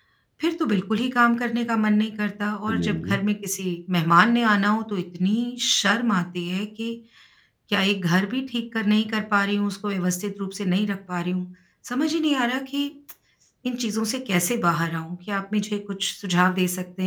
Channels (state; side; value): identical; both; correlation 1.00